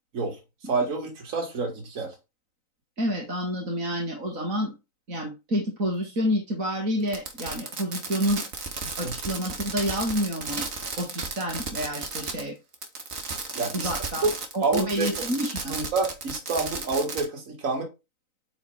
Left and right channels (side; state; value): left; late; 3.9 ms